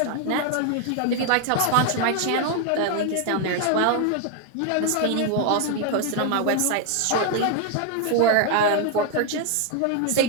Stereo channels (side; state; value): both; different; correlation 0.01